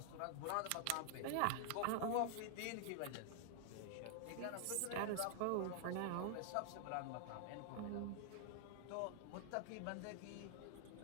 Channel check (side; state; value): both; different; correlation 0.00